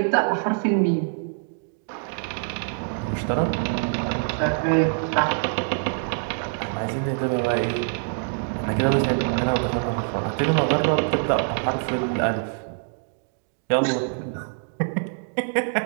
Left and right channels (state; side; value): silent; left; 62 dB below the other